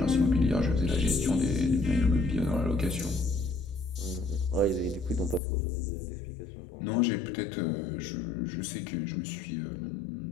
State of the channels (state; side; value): drops out; right; at 5.4 s